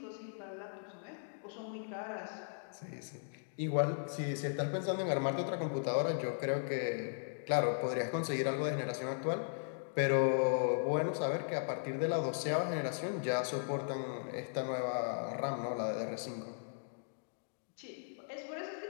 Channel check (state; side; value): silent; right; digital silence